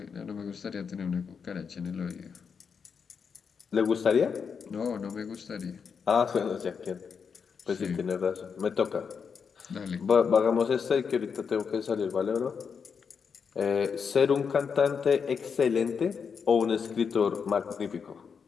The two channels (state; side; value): quieter; right; 6.2 dB